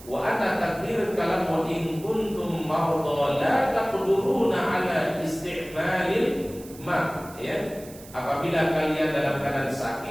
wa anna takdir kalam wa in kuntum marda la taqduruna ala isti'malil ma, ya. Apabila kalian dalam keadaan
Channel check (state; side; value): noise; right; hiss, 19 dB below the sound